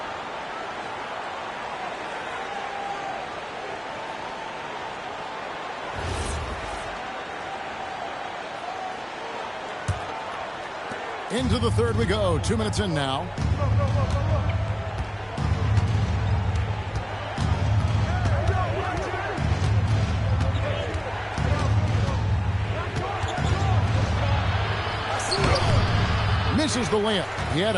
Into the third we go. 2 minutes in now. Misses the layup. He had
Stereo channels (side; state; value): both; identical; correlation 1.00